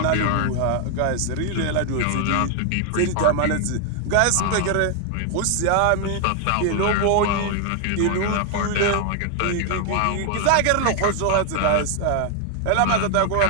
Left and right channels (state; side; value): different; both; correlation 0.00